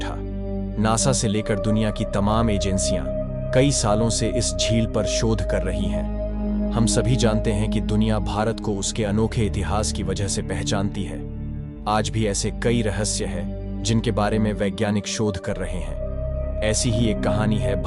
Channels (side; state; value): both; identical; correlation 1.00